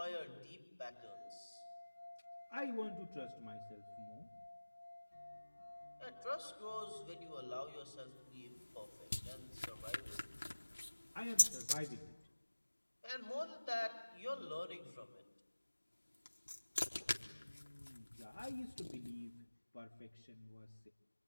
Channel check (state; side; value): inverted; both; correlation -1.00